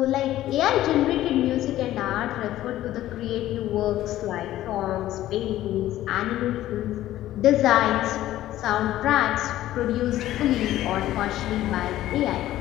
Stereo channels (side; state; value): right; quieter; 14.1 dB